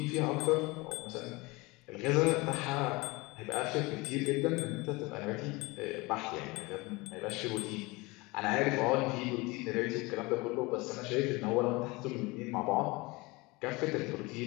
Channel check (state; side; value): quieter; right; 24.0 dB